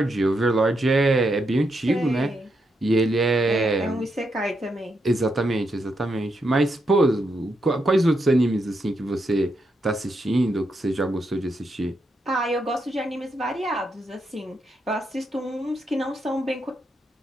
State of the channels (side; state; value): both; normal; correlation 0.82